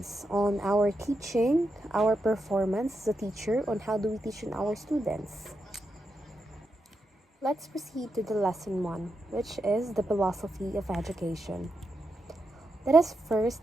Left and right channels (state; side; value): normal; both; correlation 0.85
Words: on our teaching, our performance as a teacher, on how do we teach our students. Let's proceed to the lesson 1, which is the philosophy of education. Let us